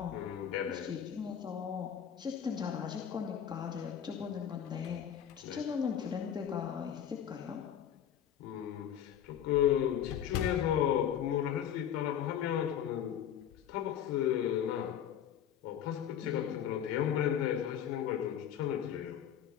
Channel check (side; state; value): right; quieter; 9.5 dB